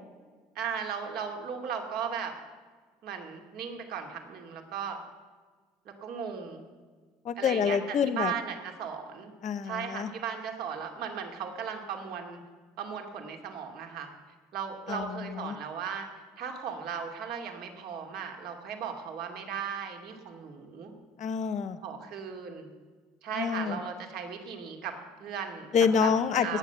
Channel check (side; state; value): both; normal; correlation 0.42